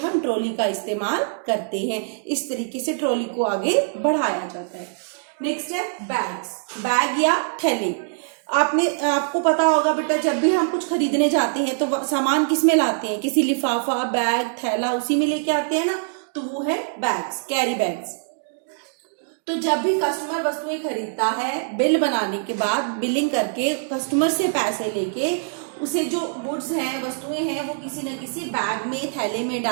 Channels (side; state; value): left; silent; digital silence